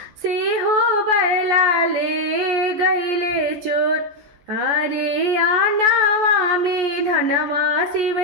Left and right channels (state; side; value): late; left; 14 ms